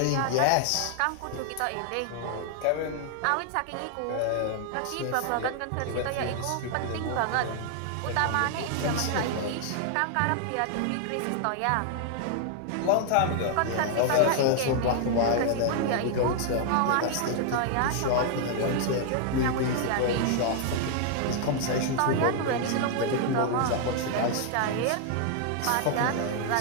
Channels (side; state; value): both; different; correlation 0.00